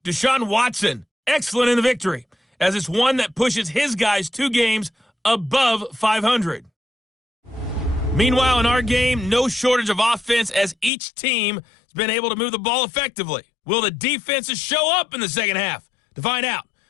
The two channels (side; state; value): right; drops out; at 10.9 s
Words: Deshaun Watson, excellent in the victory, as it's one that pushes his guys 2 games above 500. Meanwhile, in our game, no shortage of offense as each team has been able to move the ball effectively. Will the defenses show up in the second half? To find out,